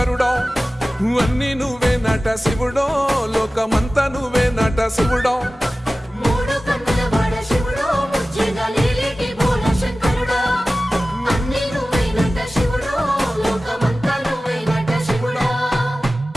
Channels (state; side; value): normal; both; correlation 0.96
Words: అన్ని నువ్వే నట శివుడో లోకమంతా నువ్వే నట శివుడో